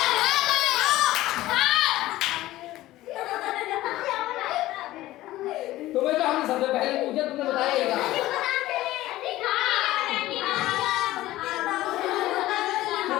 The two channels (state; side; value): quieter; right; 16.2 dB